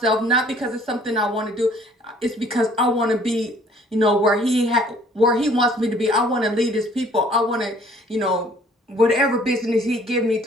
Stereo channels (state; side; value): normal; both; correlation 0.57